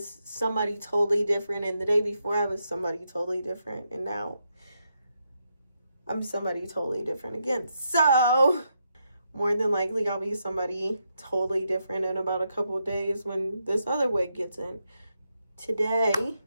somebody totally different, and the day before I was somebody totally different, and now I'm somebody totally different again. So more than likely I'll be somebody totally different in about a couple of days when this other wig gets in. Today,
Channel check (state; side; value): inverted; both; correlation -0.82